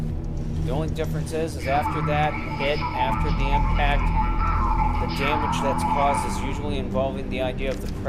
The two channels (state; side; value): identical; both; correlation 1.00